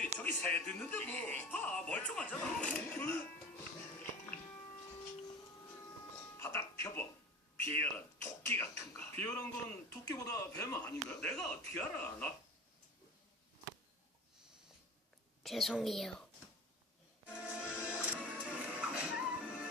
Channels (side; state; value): both; normal; correlation 0.36